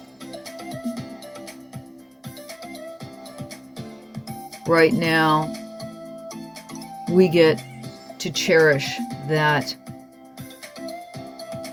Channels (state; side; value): identical; both; correlation 1.00